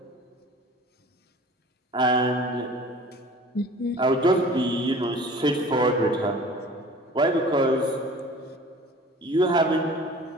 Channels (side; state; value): both; normal; correlation 0.45